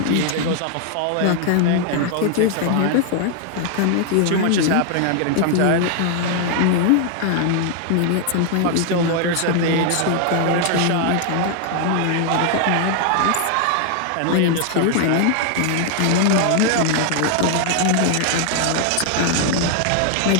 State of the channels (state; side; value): different; both; correlation 0.00